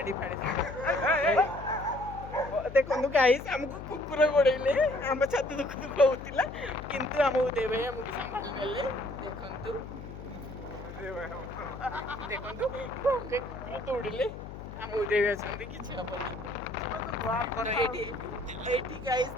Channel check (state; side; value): noise; left; hum, 12 dB below the sound